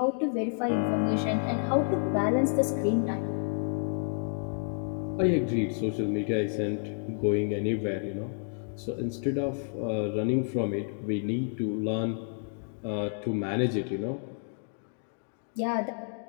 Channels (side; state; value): right; silent; digital silence